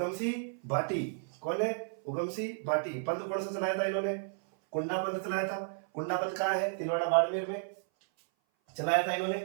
भाटी। कौन है? उगमसिंह भाटी। पंथ कौन सा चलाया था इन्होंने? कुंडा पंथ चलाया था। कुंडा पंथ कहाँ है? तिलवाड़ा बाड़मेर में चलाया था इन्होंने।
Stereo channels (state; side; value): silent; left; 56 dB below the other